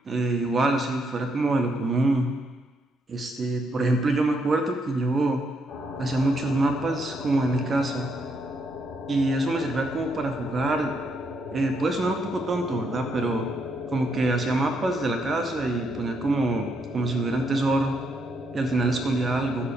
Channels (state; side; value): normal; both; correlation 0.76